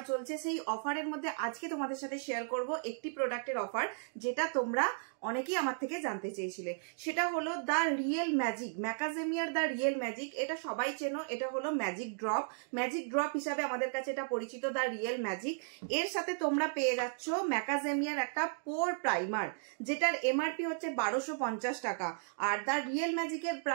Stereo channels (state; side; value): silent; left; digital silence